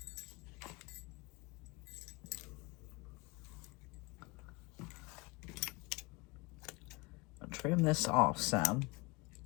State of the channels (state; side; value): quieter; right; 25.9 dB